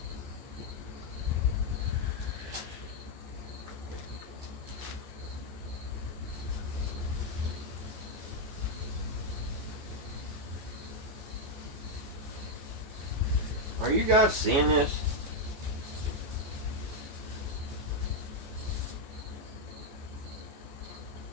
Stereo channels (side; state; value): left; late; 14 ms